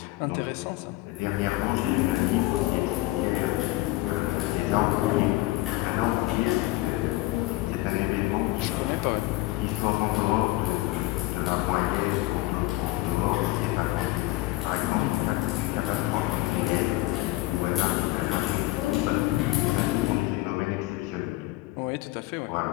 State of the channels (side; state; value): right; quieter; 18.9 dB